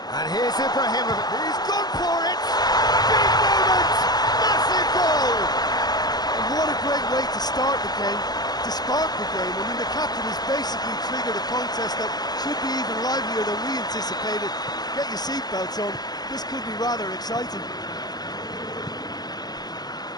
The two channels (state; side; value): late; right; 0.20 ms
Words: And here's Ibrahimovic. He's gone for it! Big moment! Massive goal! And what a great way to start the game, to spark the game. I mean, the captain has basically triggered a contest that should be even livelier than we anticipated. Get your seatbelts on. This could be rather exciting.